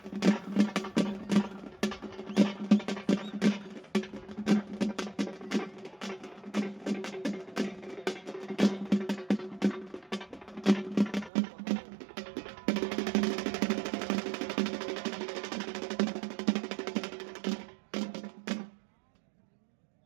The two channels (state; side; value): drops out; left; at 11.3 s